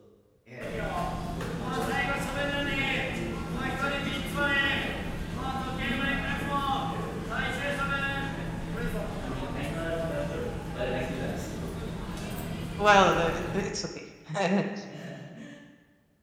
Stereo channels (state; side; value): identical; both; correlation 1.00